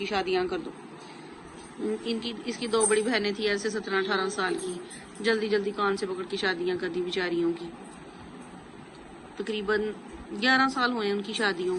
शादियां कर दो। इसकी 2 बड़ी बहनें थी ऐसे 17-18 साल की, जल्दी जल्दी कान से पकड़ के शादियां कर दी बेचारियों की। तकरीबन 11 साल हुए उनकी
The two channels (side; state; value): both; identical; correlation 1.00